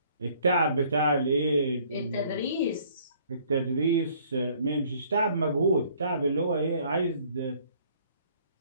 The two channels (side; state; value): both; inverted; correlation -0.60